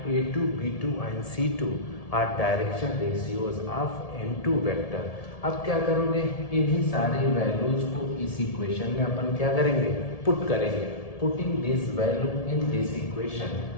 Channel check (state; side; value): late; right; 1.7 ms